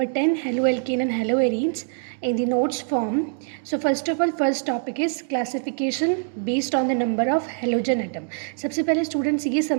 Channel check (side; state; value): left; silent; digital silence